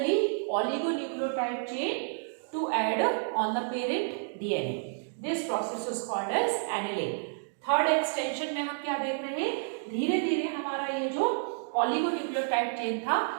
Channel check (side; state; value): left; silent; digital silence